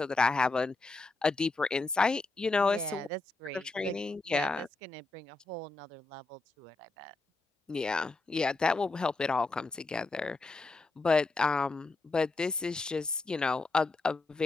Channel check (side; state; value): right; quieter; 3.4 dB